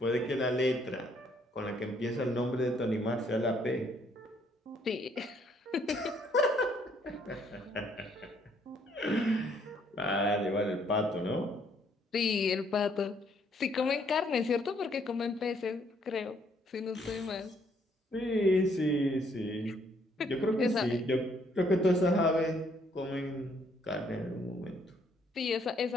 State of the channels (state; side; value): normal; both; correlation 0.67